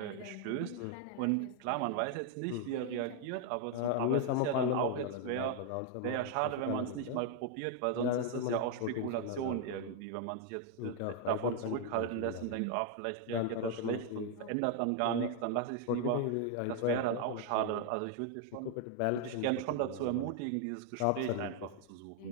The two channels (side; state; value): both; different; correlation 0.00